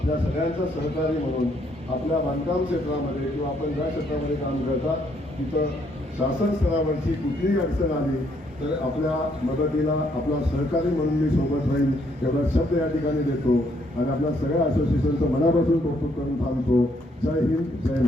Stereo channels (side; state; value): both; normal; correlation 0.70